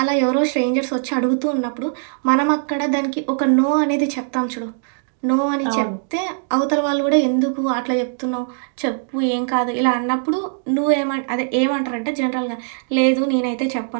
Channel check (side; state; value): left; silent; digital silence